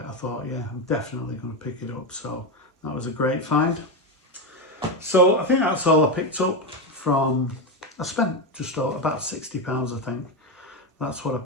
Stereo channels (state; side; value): normal; both; correlation 0.13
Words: I thought, yeah, I'm definitely going to pick it up. So that was a great find. So I think that's all I picked up from, I spent just about £60, I think. That's what I